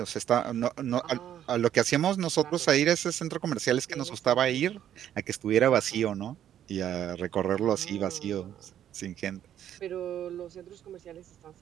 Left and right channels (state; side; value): quieter; left; 10.6 dB